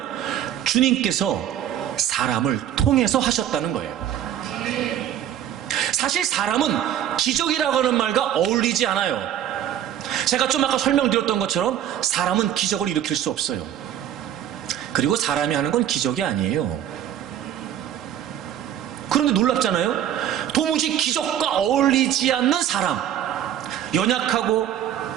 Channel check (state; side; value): quieter; left; 10.7 dB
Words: 주님께서 사람을 통해서 하셨다는 거예요. 사실 사람은 기적이라고 하는 말과 어울리지 않아요. 제가 좀 아까 설명드렸던 것처럼 사람은 기적을 일으킬 수 없어요. 그리고 사람이 하는 건 기적이 아니에요. 그런데 놀랍잖아요. 도무지 기적과 어울리지 않는 사람, 연약하고